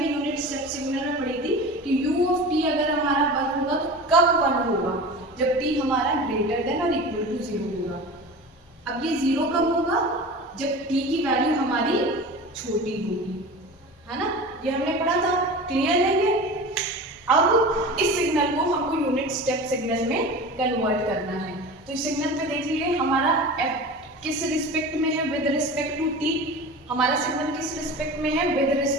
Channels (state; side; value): normal; both; correlation 0.33